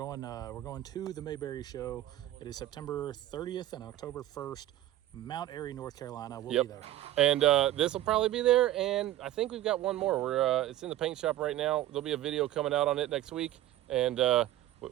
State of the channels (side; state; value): left; quieter; 14.0 dB